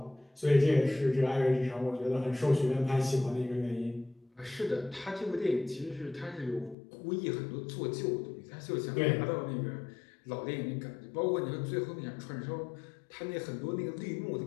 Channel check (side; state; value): right; drops out; at 6.8 s